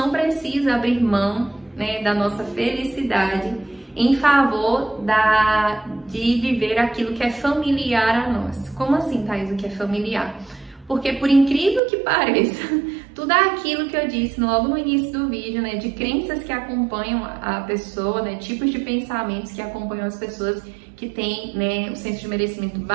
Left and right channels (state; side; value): drops out; left; at 11.8 s